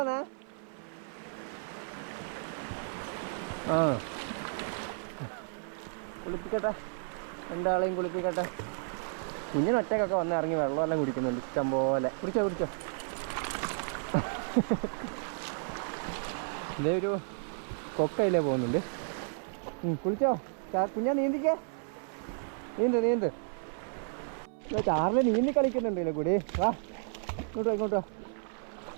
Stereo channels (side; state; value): left; silent; 56 dB below the other